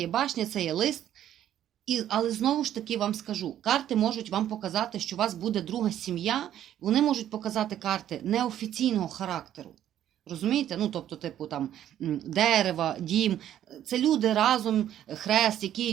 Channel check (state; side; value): quieter; left; 11.2 dB